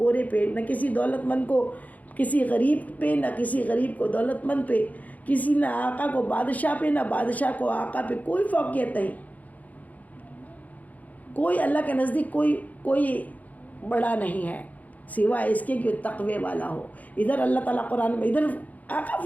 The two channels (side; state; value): right; late; 0.076 ms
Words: پہ، نہ کسی دولت مند کو کسی غریب پہ، نہ کسی غریب کو دولت مند پہ، کسی نہ آقا کو بادشاہ پہ، نہ بادشاہ کو آقا پہ کوئی فوقیت نہیں۔ کوئی اللہ کے نزدیک کوئی بڑا نہیں ہے سوائے اس کے کہ تقوی والا ہو۔ ادھر اللہ تعالیٰ قرآن میں، ادھر آقا